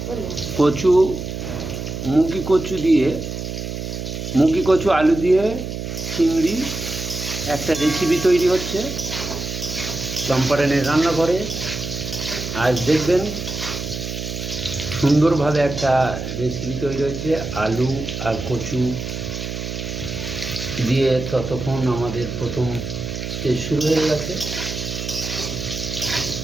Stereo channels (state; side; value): noise; right; hum, 6 dB below the sound